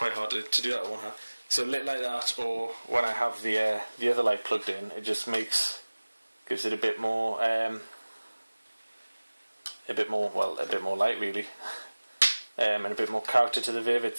hard to do that with one hand. So lit like that, or when I have the other light plugged in, it just gives it a bit more light really, and a bit more character to the Viv.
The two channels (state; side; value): inverted; both; correlation -1.00